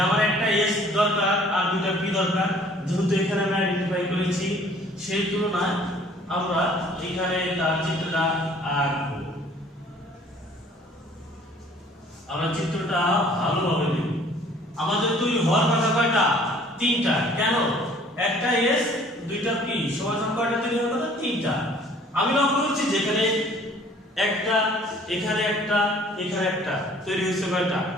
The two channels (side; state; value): both; normal; correlation 0.55